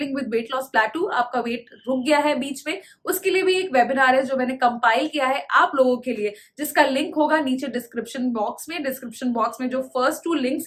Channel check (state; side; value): identical; both; correlation 1.00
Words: with weight loss plateau, आपका वेट रुक गया है बीच में, उसके लिए भी एक वेबिनार है जो मैंने कंपाइल किया है आप लोगों के लिए, जिसका लिंक होगा नीचे डिस्क्रिप्शन बॉक्स में. डिस्क्रिप्शन बॉक्स में जो फर्स्ट 2